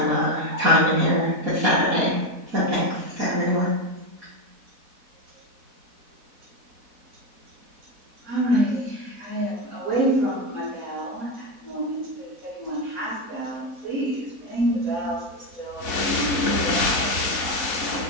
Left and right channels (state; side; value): late; left; 4.1 ms